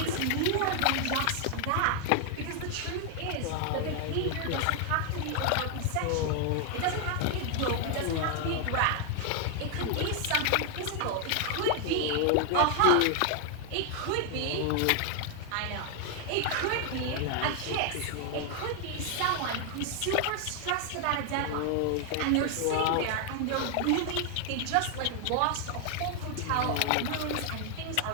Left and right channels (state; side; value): different; both; correlation 0.00